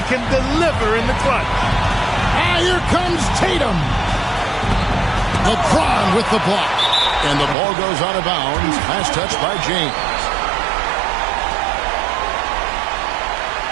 can deliver in the clutch. Ah, here comes Tatum. LeBron with the block. And the ball goes out of bounds. Last touch by James.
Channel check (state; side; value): drops out; left; at 7.6 s